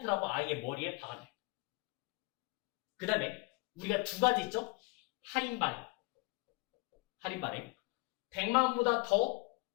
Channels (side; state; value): right; quieter; 26.0 dB